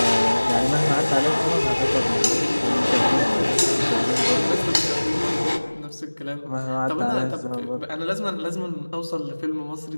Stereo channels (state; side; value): inverted; both; correlation -1.00